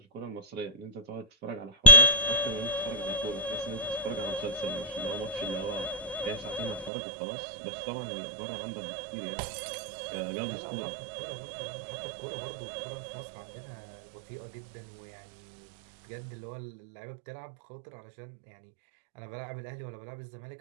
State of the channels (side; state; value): left; drops out; at 6.9 s